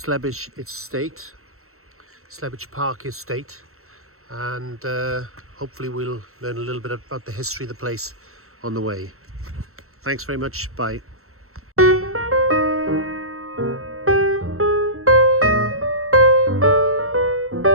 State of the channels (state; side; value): late; left; 0.63 ms